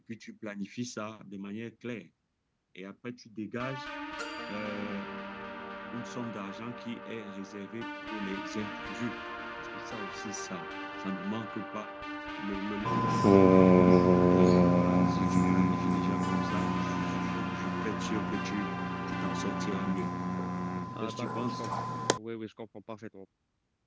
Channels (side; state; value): both; identical; correlation 1.00